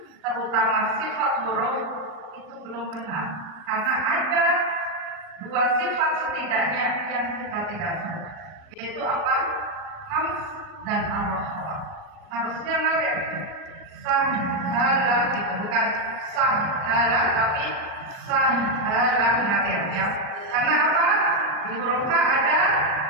terutama sifat huruf itu belum benar, karena ada 2 sifat setidaknya yang kita tidak salah, yaitu apa? Hams dan ar-rakhwa. Harusnya ngalir sahala gitu, bukan sahala tapi sahala ngalir ya. Karena apa? Di huruf H ada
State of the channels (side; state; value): left; late; 39 ms